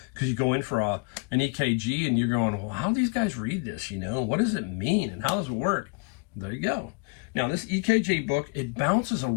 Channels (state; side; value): quieter; right; 32.8 dB